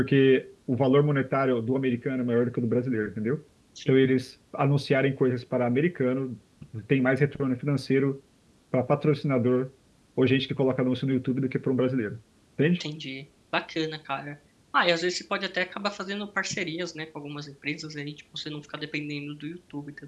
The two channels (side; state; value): both; identical; correlation 1.00